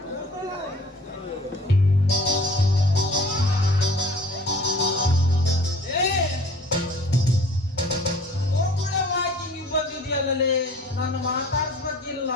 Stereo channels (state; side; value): normal; both; correlation 0.49